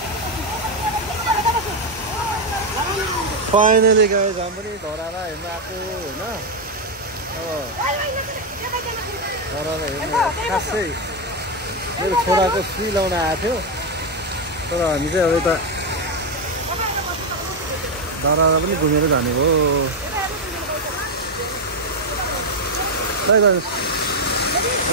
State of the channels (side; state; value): both; normal; correlation 0.05